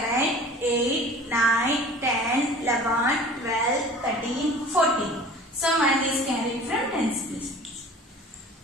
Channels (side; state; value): both; normal; correlation 0.43